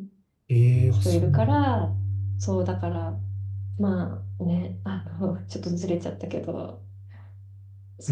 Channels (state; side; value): identical; both; correlation 1.00